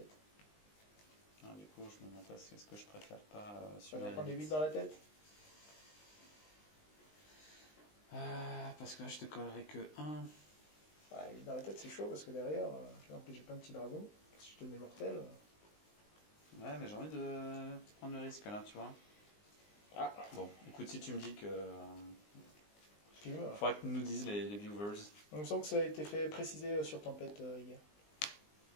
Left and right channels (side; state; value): right; late; 19 ms